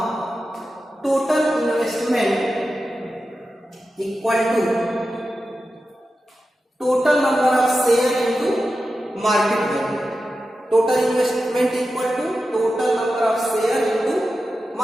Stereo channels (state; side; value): normal; both; correlation 0.92